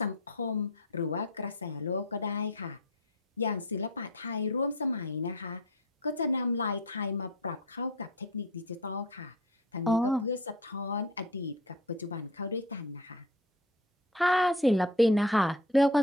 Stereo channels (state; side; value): normal; both; correlation 0.36